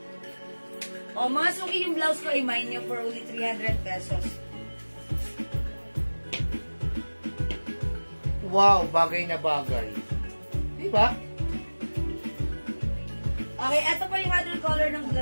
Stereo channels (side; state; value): both; inverted; correlation -1.00